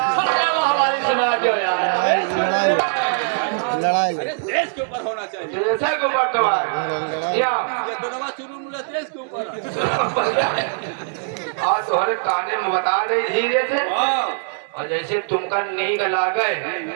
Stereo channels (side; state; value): left; silent; digital silence